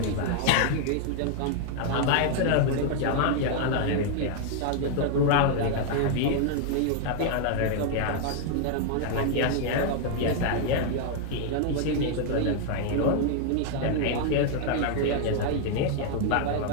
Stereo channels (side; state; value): both; different; correlation 0.00